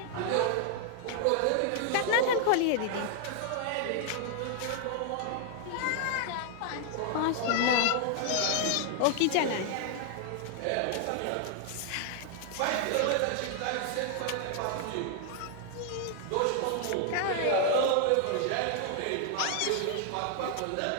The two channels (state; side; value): different; both; correlation 0.00